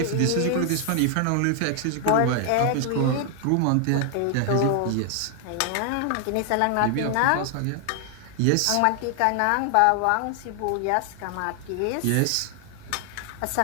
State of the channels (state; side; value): different; both; correlation 0.00